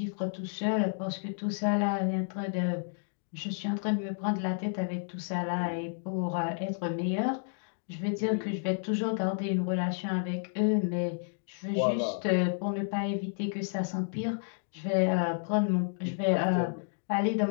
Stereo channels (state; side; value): silent; right; digital silence